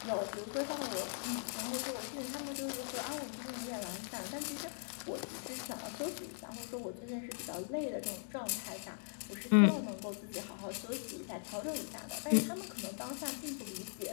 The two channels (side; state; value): right; silent; digital silence